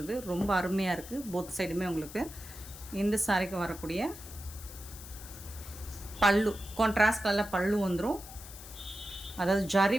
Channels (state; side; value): noise; left; hiss, 15 dB below the sound